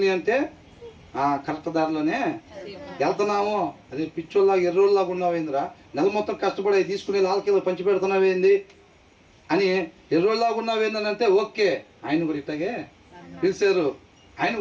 అంటే కరెక్ట్ దారిలోనే వెళ్తున్నాము. అదే పిచ్చోళ్ళలాగా ఎర్రోళ్ళలాగా ఉన్నావేందిరా, నెల మొత్తం కష్టపడి తీసుకుని లాల్కీలో పంచి పెడుతున్నావేంది అని ఎర్రోళ్ళలాగా ఉన్నావేందని అంటే ఓకే, ఆయన కూడా ఇట్టాగే పిలిచారు, ఆయన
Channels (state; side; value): identical; both; correlation 1.00